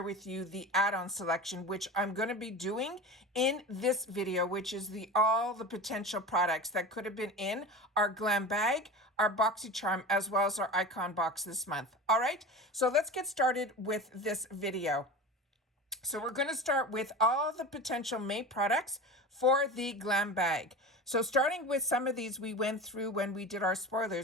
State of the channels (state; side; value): normal; both; correlation 0.31